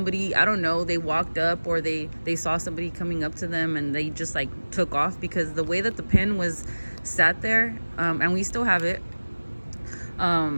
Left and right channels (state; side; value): inverted; both; correlation -1.00